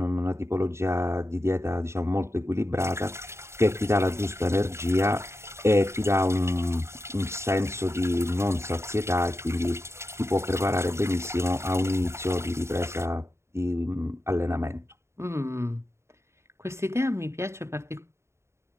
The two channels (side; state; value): left; late; 0.13 ms